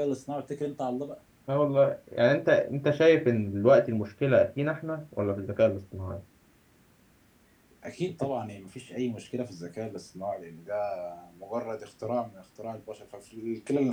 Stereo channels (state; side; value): identical; both; correlation 1.00